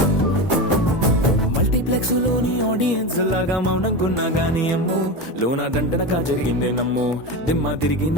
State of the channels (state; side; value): normal; both; correlation 0.21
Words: మల్టీప్లెక్స్ లోని ఆడియన్స్ లాగా మౌనంకున్నా గానీ అమ్ము లోన దండనగా జరిగిందే నమ్ము దిమ్మ తిరిగి